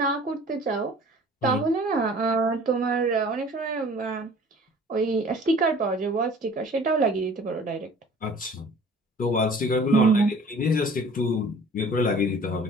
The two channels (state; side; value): normal; both; correlation 0.48